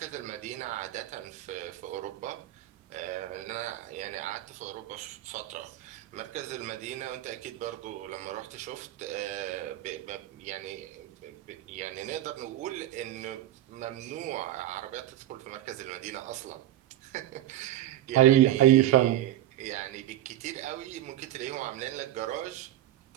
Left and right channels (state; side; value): quieter; left; 13.6 dB